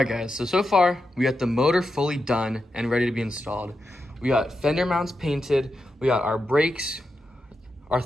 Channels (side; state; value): both; normal; correlation 0.88